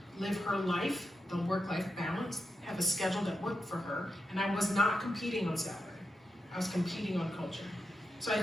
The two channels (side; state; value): both; normal; correlation 0.86